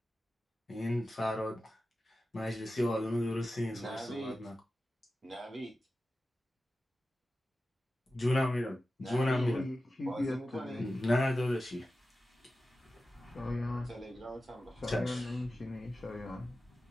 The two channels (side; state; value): both; normal; correlation 0.94